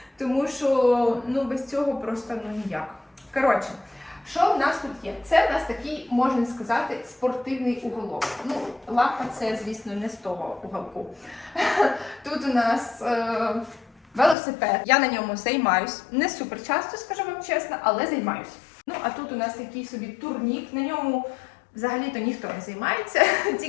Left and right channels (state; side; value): drops out; right; at 14.4 s